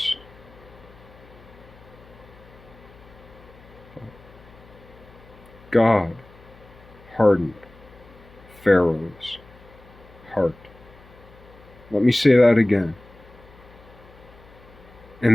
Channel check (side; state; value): left; noise; hum, 23 dB below the sound